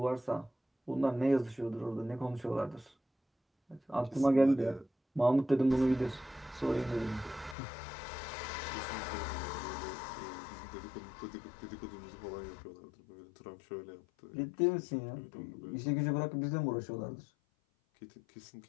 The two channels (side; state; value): right; drops out; at 7.6 s